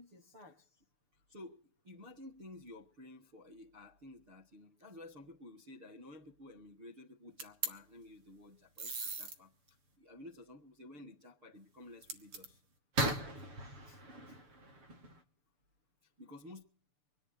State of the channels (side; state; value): left; late; 6.8 ms